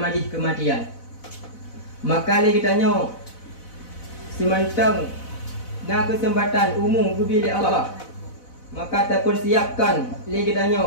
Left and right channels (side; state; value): right; late; 4.0 ms